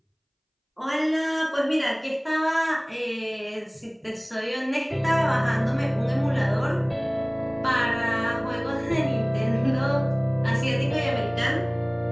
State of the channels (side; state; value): both; identical; correlation 1.00